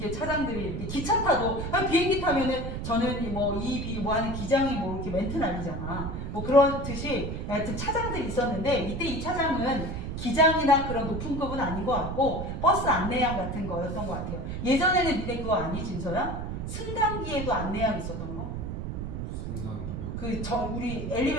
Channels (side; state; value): right; noise; rumble, 5 dB below the sound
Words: 차장들이 이렇게 기차 타도 비행기 타면은 저는 뭐 하는 기장이 뭐 이렇게 멘트 날리잖아. 뭐 그렇듯이 하여튼 차장들이 있었는데 이때 이 차장은 기장이나 그런 높은 급은 아닌 것 같고 버스 안내양 같은 거였던 것 같아요. 예전에는 니네 그거 아니 진서야? 승강기에도 안내양 있었던 거? 승강이요? 우리